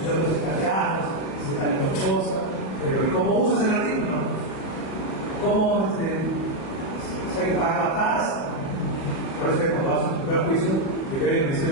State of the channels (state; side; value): late; right; 37 ms